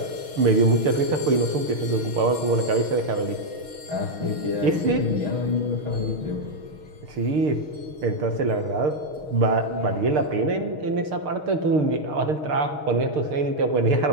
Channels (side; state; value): left; late; 6.6 ms